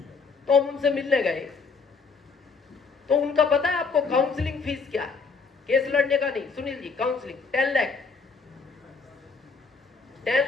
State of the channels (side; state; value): right; quieter; 4.8 dB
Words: तो हम उनसे मिलने गए। तो उनका पता है आपको काउंसलिंग फीस क्या है? केस लड़ने का नहीं, सुनील जी, काउंसलिंग 10 लाख।